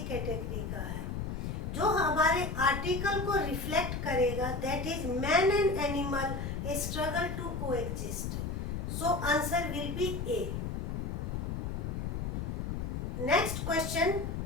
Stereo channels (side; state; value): left; noise; rumble, 3 dB below the sound